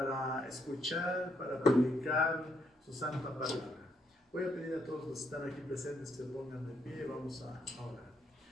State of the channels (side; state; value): both; normal; correlation 0.75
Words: escuchar, para predicar su santa palabra. Voy a pedir a todos los que están aquí presentes que se pongan de pie y vamos a orar.